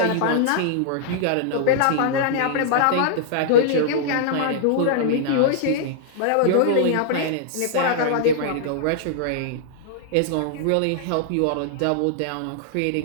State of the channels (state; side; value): different; both; correlation -0.01